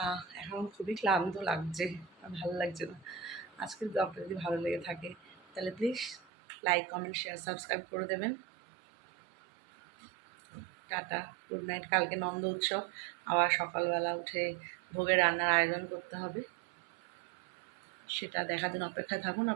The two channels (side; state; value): left; drops out; at 6.2 s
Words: এখন খুবই ক্লান্ত লাগছে, আর ভালো লাগছে না। আজকের ব্লগটা যদি ভালো লেগে থাকে তাহলে please like, comment, share, subscribe করে দেবেন। Tata, good night. কালকে নন্দ উৎসব, আবার সকালবেলা উঠে ভোগের রান্নার আয়োজন করতে হবে, সেটা দেখার জন্য অপেক্ষায় থাকুন